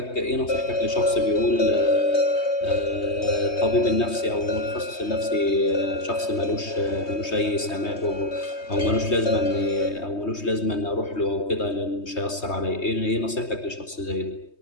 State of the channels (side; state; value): right; late; 3.2 ms